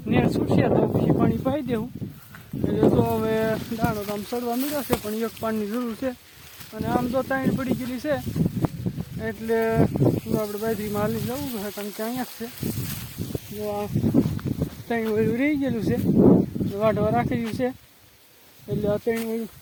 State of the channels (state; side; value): identical; both; correlation 1.00